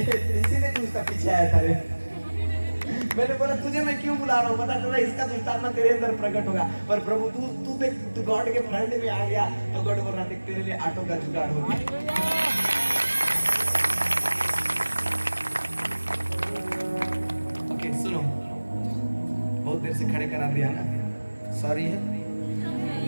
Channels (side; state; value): both; inverted; correlation -1.00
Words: तू इसका पीछे आया था रे। मैंने बोला तुझे मैं क्यों बुला रहा हूँ, पता चला इसका दुष्टात्मा तेरे अंदर प्रकट होगा। पर प्रभु तू देख, तू गॉड के फ्रंट में आ गया तो गॉड बोल रहा देख तेरे लिए ऑटो का जुगाड़ हो गया। ओके सुनो, बहुत देर से खड़े करा दिया ना, सॉरी है।